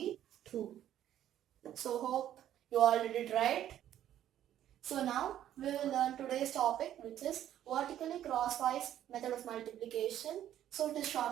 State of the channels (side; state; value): left; quieter; 11.5 dB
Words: 2. So hope you all did it right. So now we will learn today's topic, which is vertically crosswise method of multiplication. So it is